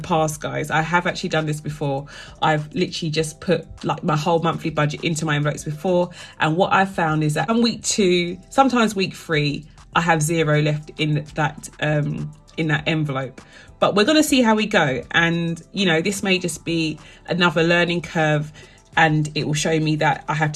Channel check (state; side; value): identical; both; correlation 1.00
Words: guys. I have actually done this before. I've literally just put like my whole monthly budget into my envelopes before. And what I've found is that on week 2, sometimes week 3, I have 0 left in that envelope. But we're going to see how we go. And, you know, this may just be another learning curve, and it will show me that I have